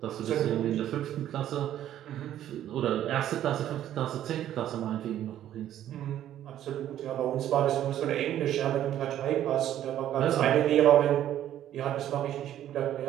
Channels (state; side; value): quieter; left; 11.7 dB